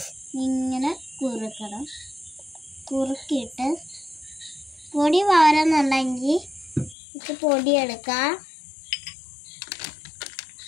ഇങ്ങനെ കുറുക്കണം. കുറുക്കിയിട്ട് പൊടി വാരുന്നുണ്ടെങ്കിൽ ഇത് പൊടി എടുക്കാം.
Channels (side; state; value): right; drops out; at 7.0 s